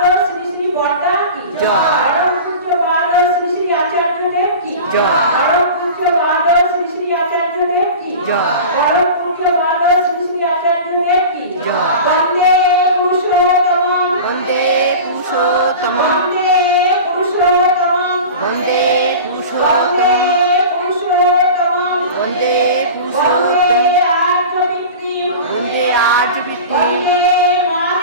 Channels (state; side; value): inverted; both; correlation -0.34